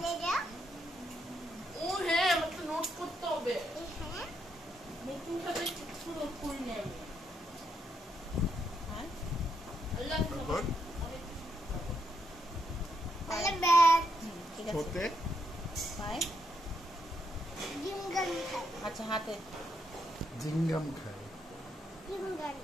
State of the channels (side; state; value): both; normal; correlation 0.78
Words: ও হ্যাঁ আমাকে নোট করতে হবে। নতুন ভাবে কিছু নোট করি না আমি। হ্যাঁ আল্লাহ ছোটে পায় জিমগাম খায়। আচ্ছা হাতে জিঙ্গাম খায়।